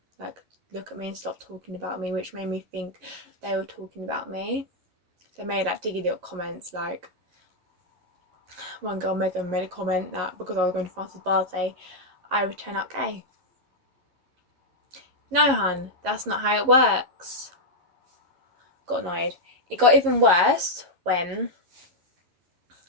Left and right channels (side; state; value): left; late; 11 ms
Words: like look at me and stop talking about me, which made me think they were talking about me. They made like diggy little comments, like one girl made a comment that because I was going to France's birthday, I would turn out gay. No, hun, that's not how it works. Got annoyed. It got even worse when